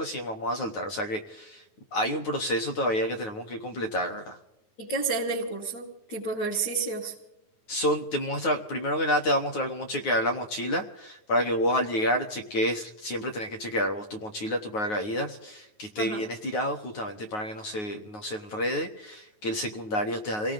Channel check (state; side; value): late; right; 9.4 ms